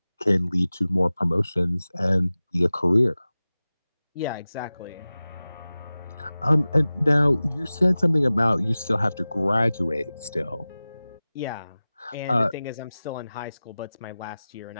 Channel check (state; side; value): inverted; both; correlation -0.97